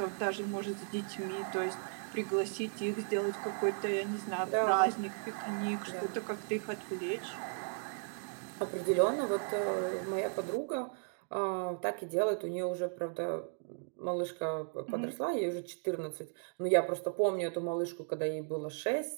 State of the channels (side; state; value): left; silent; 54 dB below the other